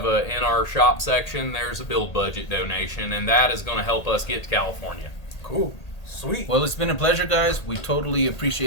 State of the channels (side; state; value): right; late; 1.8 ms